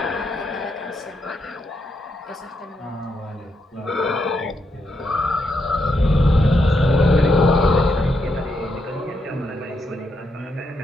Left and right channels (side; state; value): both; normal; correlation 0.81